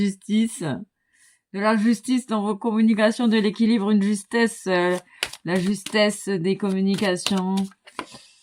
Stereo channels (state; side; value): identical; both; correlation 1.00